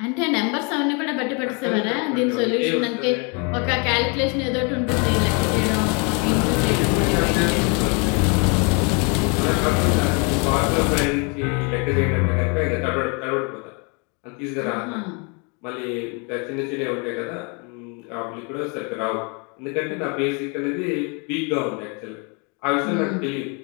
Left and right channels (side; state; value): right; quieter; 33.7 dB